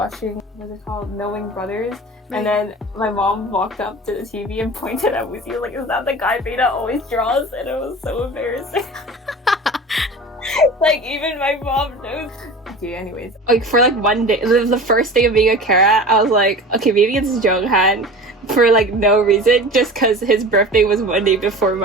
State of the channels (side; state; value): both; normal; correlation 0.36